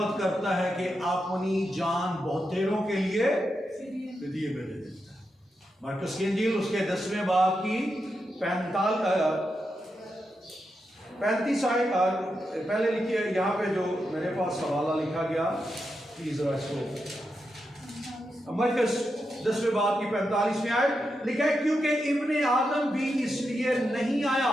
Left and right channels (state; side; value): normal; both; correlation 0.86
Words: करता है कि अपनी जान बहुतेरों के लिए फिदिये में दे देता है। मरकुस की इंजील उसके 10वें बाब की 35 पहले लिखिए, यहाँ पे जो मेरे पास हवाला लिखा गया, प्लीज जरा इसको, मरकुस 10वें बाब की 45वीं आयत लिखा है, क्योंकि इब्ने आदम भी इसलिए नहीं आया